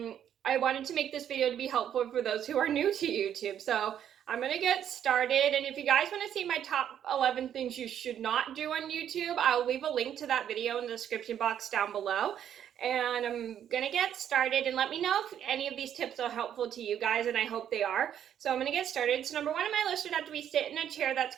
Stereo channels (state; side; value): quieter; left; 9.8 dB